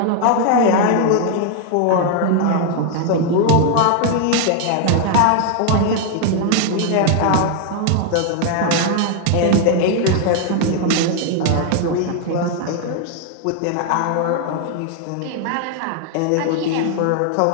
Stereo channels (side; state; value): both; different; correlation 0.00